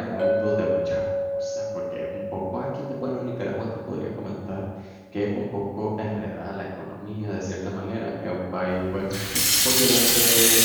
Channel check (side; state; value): both; identical; correlation 1.00